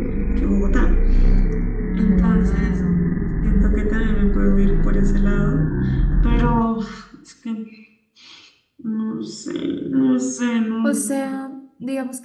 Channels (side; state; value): both; identical; correlation 1.00